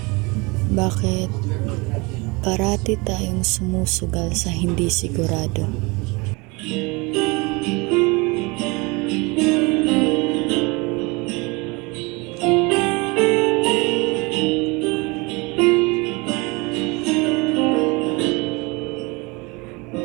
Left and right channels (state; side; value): quieter; left; 26.7 dB